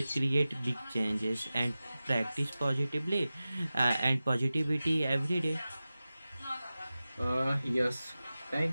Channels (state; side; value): inverted; both; correlation -0.95